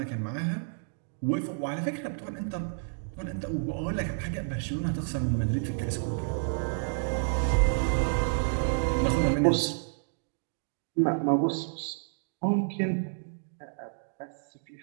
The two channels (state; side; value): silent; left; digital silence